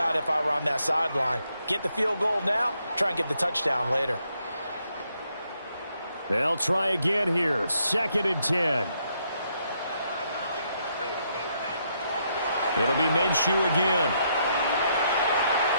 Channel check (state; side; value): inverted; both; correlation -0.75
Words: if I were on that sideline. Get the field goal now, try and get the touchdown later. They'll try again here. 2nd and 10. It'll be Minshew again.